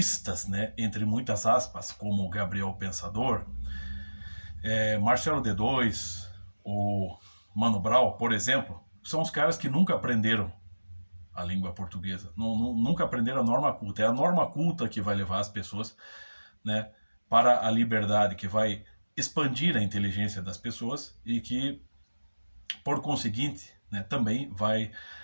né, entre muitas aspas, como Gabriel Pensador, Marcelo D2, ou Mano Brown, por exemplo, são os caras que nunca aprenderam a língua portuguesa, nunca aprenderam a norma culta. É a norma culta que vai levar as pessoas, né, para a liberdade, que vai expandir a inteligência das pessoas e que, por conseguinte, né, também vai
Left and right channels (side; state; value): both; inverted; correlation -1.00